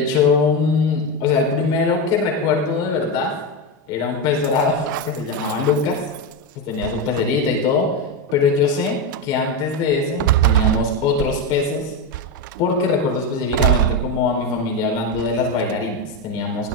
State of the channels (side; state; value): both; normal; correlation 0.12